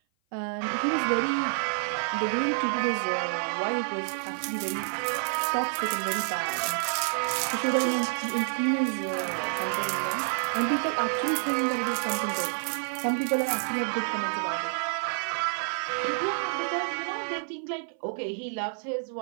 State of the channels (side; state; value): left; silent; 56 dB below the other